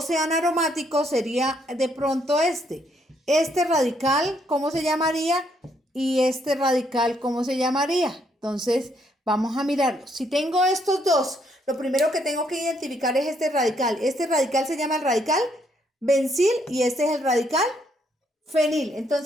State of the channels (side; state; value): both; normal; correlation 0.72